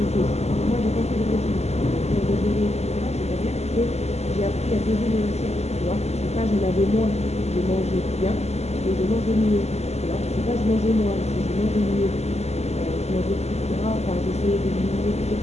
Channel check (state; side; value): late; right; 0.31 ms